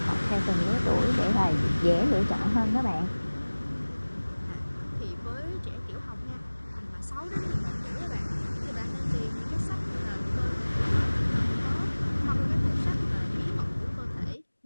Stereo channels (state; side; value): inverted; both; correlation -1.00